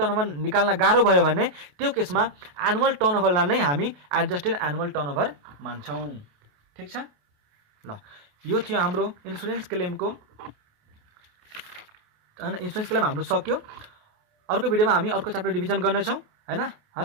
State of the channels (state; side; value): late; left; 28 ms